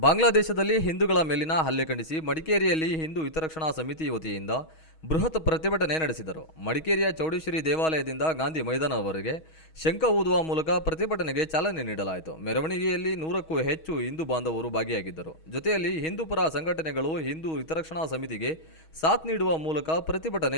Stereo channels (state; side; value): late; right; 6.3 ms